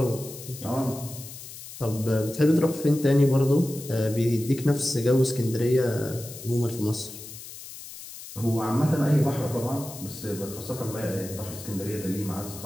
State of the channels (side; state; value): left; noise; hiss, 13 dB below the sound